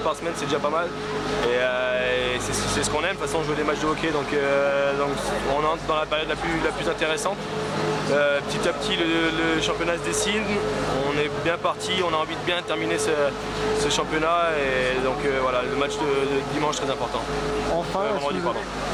semaine, c'est déjà pas mal. Et c'est ce qu'on aime, de toute façon, jouer des matchs de hockey. Donc on entre dans la période la plus intéressante. Petit à petit, le championnat se dessine. On est bien parti, on a envie de bien terminer ce championnat. Et donc voilà, le match de dimanche très important. Enfin,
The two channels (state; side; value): identical; both; correlation 1.00